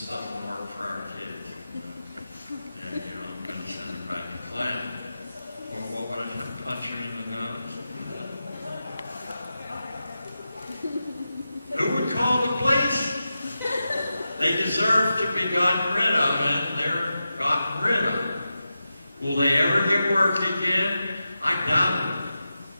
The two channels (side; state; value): both; inverted; correlation -0.91